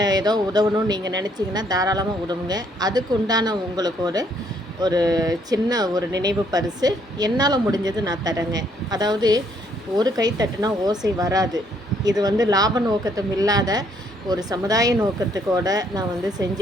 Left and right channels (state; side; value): normal; both; correlation 0.68